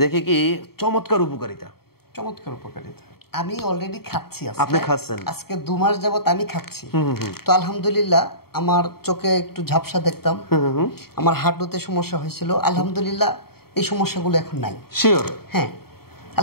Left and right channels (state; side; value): late; right; 0.95 ms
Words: দেখে কি চমৎকার উপকারিতা। আমি অলরেডি খাচ্ছি। আপনি খাচ্ছেন? আজকে 2 মাস যাবত আমি খাচ্ছি। তো আলহামদুলিল্লাহ আমার চোখে একটু ঝাপসা দেখতাম, আমার হাঁটুতে সমস্যা হয়েছিল, আলহামদুলিল্লাহ এই সমস্যাগুলো এখন নাই। শিওর? হ্যাঁ